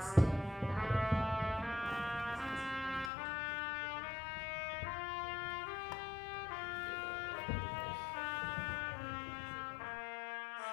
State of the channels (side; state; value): right; drops out; at 3.1 s